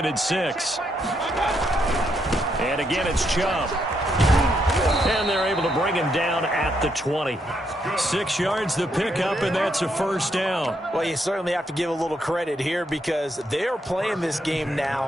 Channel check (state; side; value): normal; both; correlation 0.77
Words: and 6. And again, it's Chubb. And they're able to bring him down at the 20. 6 yards the pickup, and that's a first down. Well, you certainly have to give a little credit here, because they're playing this game now